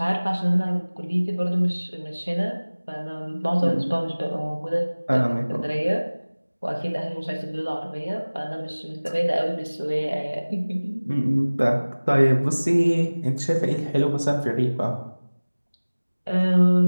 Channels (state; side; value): inverted; both; correlation -1.00